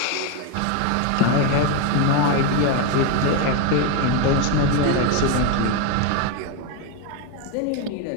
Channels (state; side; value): different; both; correlation 0.02